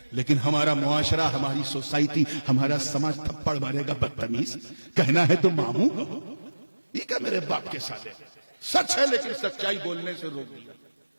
لیکن ہمارا معاشرہ، ہماری سوسائٹی، ہمارا سماج تھپڑ مارے گا، بدتمیز، کہنا ہے تو ماموں کہو، یہ کیا میرے باپ کے سالے، سچ ہے لیکن سچائی بولنے سے روک دیا۔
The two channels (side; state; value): both; inverted; correlation -1.00